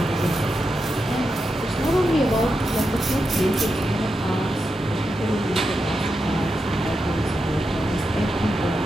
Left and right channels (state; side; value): normal; both; correlation 0.87